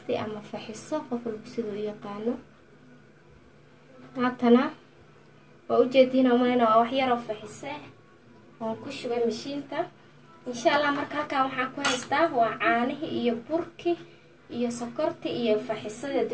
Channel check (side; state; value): both; identical; correlation 1.00